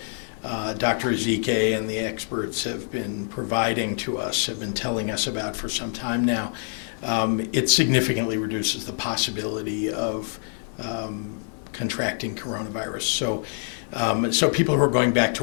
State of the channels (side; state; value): right; silent; 61 dB below the other